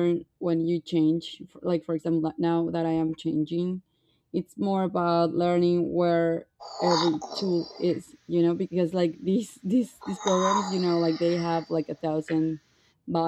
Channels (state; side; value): identical; both; correlation 1.00